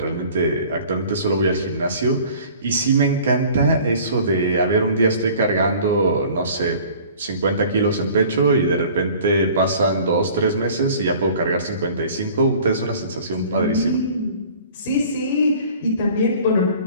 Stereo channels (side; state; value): both; inverted; correlation -0.48